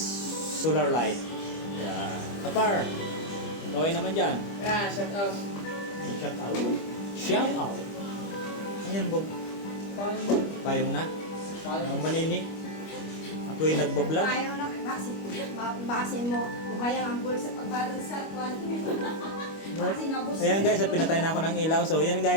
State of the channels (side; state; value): right; late; 25 ms